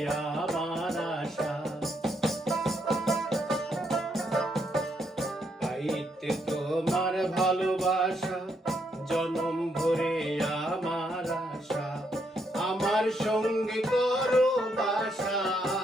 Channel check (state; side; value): normal; both; correlation 0.76